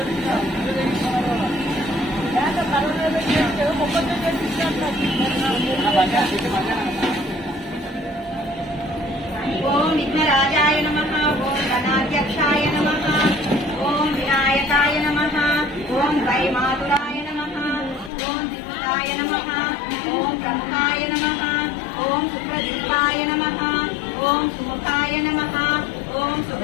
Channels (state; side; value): drops out; right; at 18.1 s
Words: ఓం విఘ్నరాజాయ నమః ఓం గణాధ్యక్షాయ నమః ఓం వినాయకాయ నమః ఓం వైమాతురాయ నమః ఓం దిగుతాయ నమః ఓం బ్రహ్మాయ నమః ఓం సుప్రదీపాయ నమః ఓం సుముఖాయ నమః ఓం